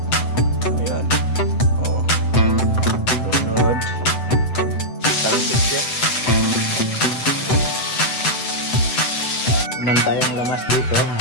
Ayan, oh, lunod, talsik siya. Naman tayong lamas dito,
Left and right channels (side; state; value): right; late; 7.9 ms